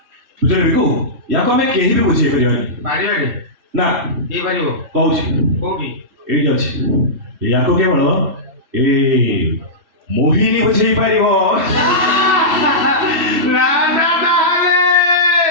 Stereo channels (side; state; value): left; late; 2.7 ms